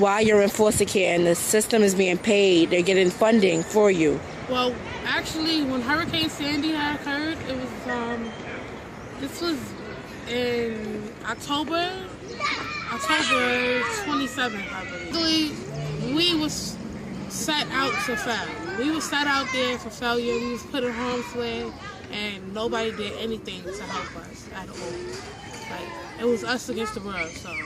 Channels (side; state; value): both; identical; correlation 1.00